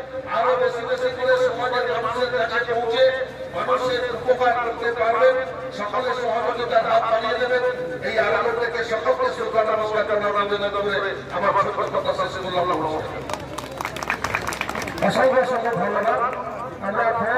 আরো বেশি বেশি করে সমাজের মানুষের কাছে পৌঁছে মানুষের উপকার করতে পারবেন। সকলের সহযোগিতার হাত বাড়িয়ে দেবেন। এই আলোচনা থেকে সকলকে শ্রদ্ধা নমস্কার জানাবেন করে আমার ছোট কথা শেষ করলাম। অসংখ্য অসংখ্য ধন্যবাদ। আমরা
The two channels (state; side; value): identical; both; correlation 1.00